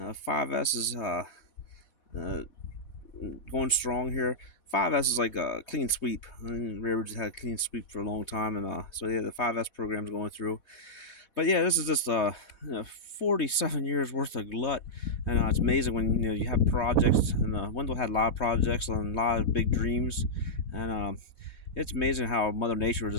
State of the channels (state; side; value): late; right; 4.1 ms